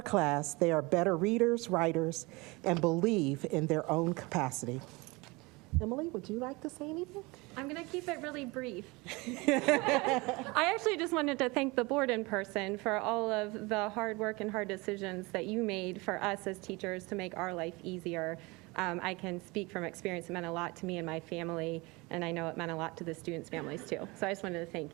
they are better readers, writers, and believe in their own capacity. Emily, would you like to say anything? I'm going to keep it really brief. I actually just wanted to thank the board in person for all of the hard work and hard decisions that you made for us as teachers to make our life easier. I can speak from experience. It meant a lot to me and my family, and I know it meant a lot to the students' families too. So I just wanted to thank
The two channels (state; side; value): quieter; left; 24.8 dB